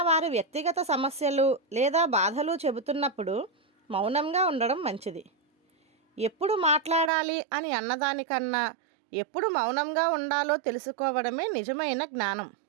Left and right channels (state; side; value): drops out; left; at 7.1 s